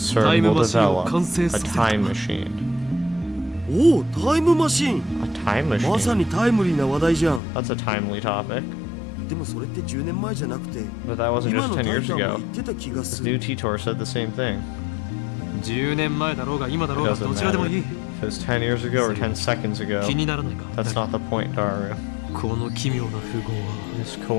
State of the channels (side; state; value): right; drops out; at 7.4 s